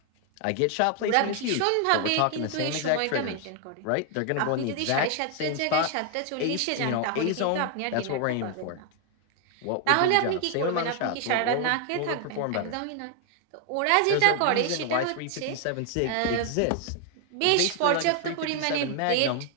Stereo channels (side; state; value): both; different; correlation 0.00